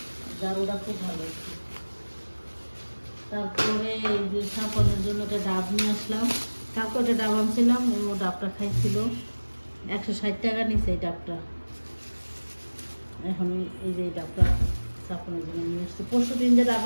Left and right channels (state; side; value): inverted; both; correlation -1.00